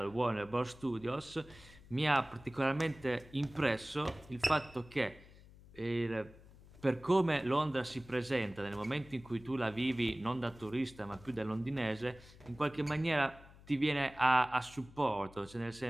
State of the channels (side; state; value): left; noise; hum, 21 dB below the sound